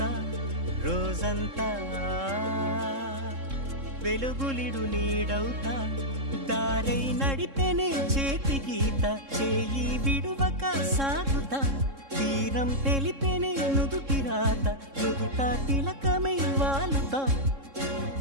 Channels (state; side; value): late; left; 3.7 ms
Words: రోజంతా వెలుగులిడు నీడవుతా దారై నడిపెనే చేతి గీత చేయి విడువక సాగుతా తీరం తెలిపెనే నుదుటి రాత నుదుట తిలకమై వాలుతా